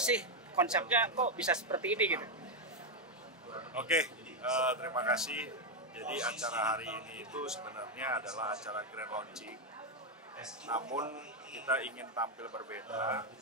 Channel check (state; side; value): normal; both; correlation 0.03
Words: konsepnya, kok bisa seperti ini gitu? Oke, terima kasih. Jadi acara hari ini itu sebenarnya adalah acara grand launching. Namun kita ingin tampil berbeda,